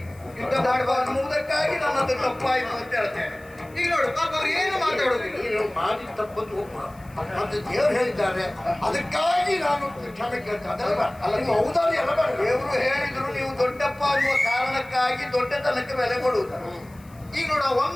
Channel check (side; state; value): left; noise; hiss, 27 dB below the sound